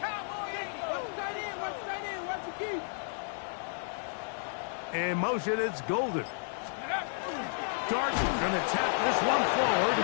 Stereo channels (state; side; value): silent; right; digital silence